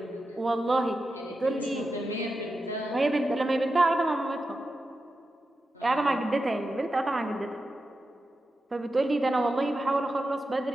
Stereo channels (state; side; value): normal; both; correlation 0.90